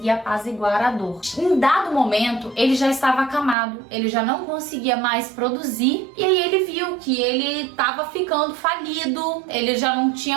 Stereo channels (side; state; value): left; drops out; at 3.6 s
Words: apaziguar a dor. Em dado momento, ele já estava acamado, ele já não conseguia mais produzir e aí ele viu que ele estava ficando falido, ele já não